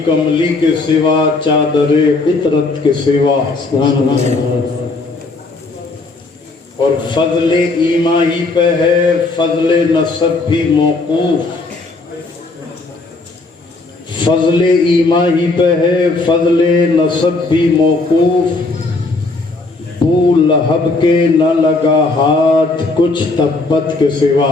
کملی کے سوا چادر عطرت کے سوا، اور فضل ایما ہی پہ ہے فضل نسب بھی موقوف، فضل ایما ہی پہ ہے فضل نسب بھی موقوف، بو لہب کے نہ لگا ہاتھ کچھ تبت کے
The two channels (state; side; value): quieter; right; 3.4 dB